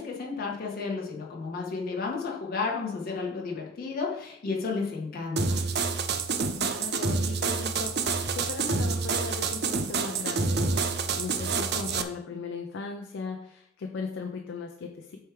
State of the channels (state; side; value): normal; both; correlation 0.38